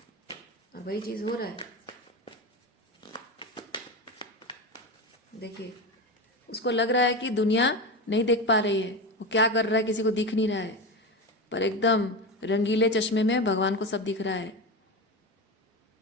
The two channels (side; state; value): both; normal; correlation 0.21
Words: और वही चीज हो रहा है। देखिए, उसको लग रहा है कि दुनिया नहीं देख पा रही है, वो क्या कर रहा है किसी को दिख नहीं रहा है, पर एकदम रंगीले चश्मे में भगवान को सब दिख रहा है।